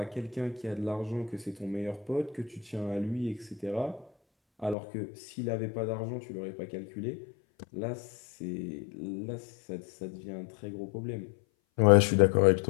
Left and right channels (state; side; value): drops out; right; at 4.8 s